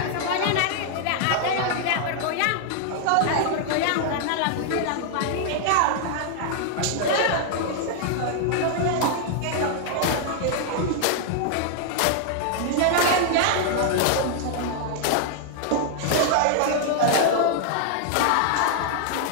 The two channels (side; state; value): both; different; correlation 0.00